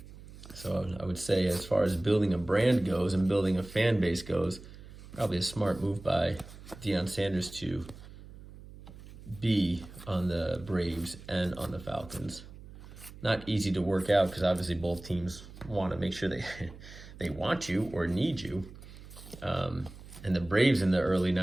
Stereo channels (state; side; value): noise; right; hum, 17 dB below the sound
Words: So I would say as far as building a brand goes and building a fan base goes, probably a smart move by Deion Sanders to be on the Braves and on the Falcons. Not easy to work out because obviously both teams want to make sure they want you or need you. And the Braves in the early